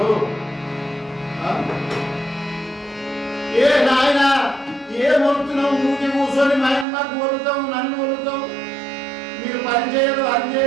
ఏ నాయన ఏం వలుతున్నావు? ఊరికి కూర్చొని మాకు వలుతావు, నన్ను వలుతావు, మీరు పని చేయరు అది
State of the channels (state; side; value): drops out; left; at 6.9 s